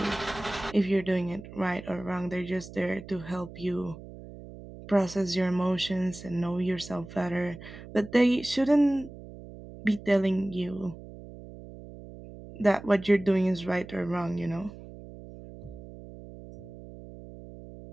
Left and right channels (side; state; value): right; noise; hum, 15 dB below the sound